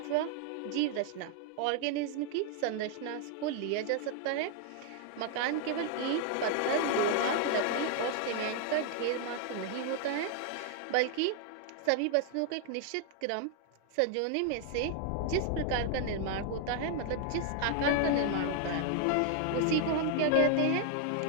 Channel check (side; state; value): both; different; correlation 0.00